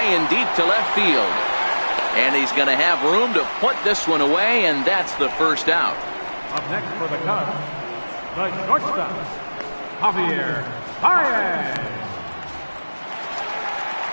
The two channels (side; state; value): both; inverted; correlation -1.00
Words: and deep to left field. And he's going to have room to put this one away, and that's the first out. Up next for the Cubs, the shortstop, Javier Baez.